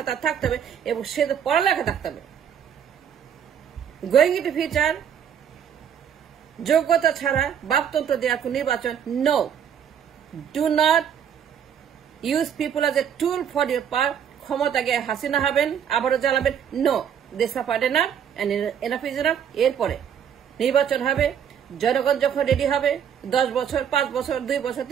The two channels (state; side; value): quieter; left; 8.4 dB